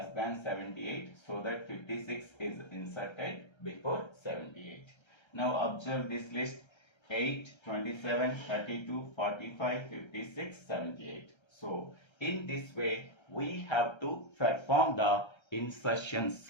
than 78, so that 56 is inserted before 78. Now observe this list: 8, 27, 32, 45, 56, 78. So in this way we have to perform the insertion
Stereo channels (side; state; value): right; late; 1.3 ms